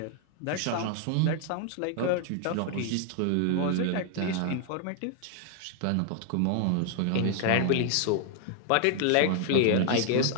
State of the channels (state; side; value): different; both; correlation 0.00